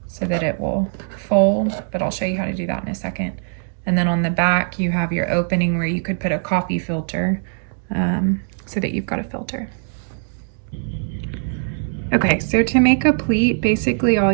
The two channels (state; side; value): silent; left; 65 dB below the other